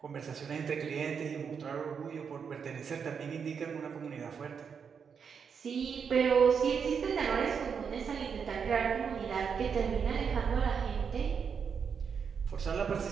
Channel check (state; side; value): quieter; left; 6.5 dB